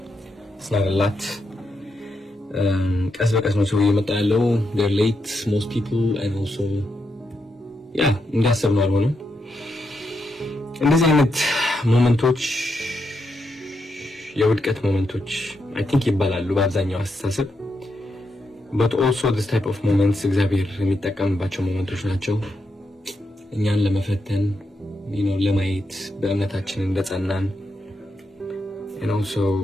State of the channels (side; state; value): both; normal; correlation 0.82